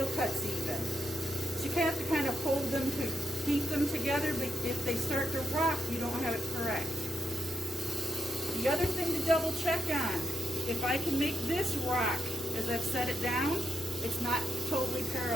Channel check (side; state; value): both; normal; correlation 0.83